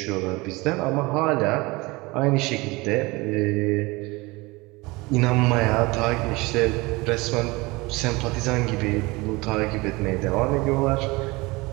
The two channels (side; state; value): left; quieter; 23.3 dB